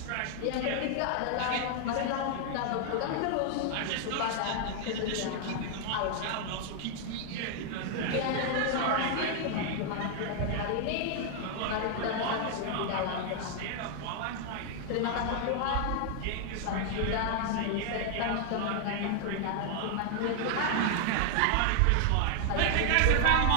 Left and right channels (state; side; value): different; both; correlation 0.00